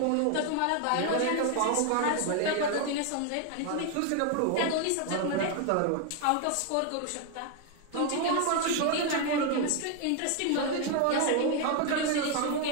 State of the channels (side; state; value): both; different; correlation 0.01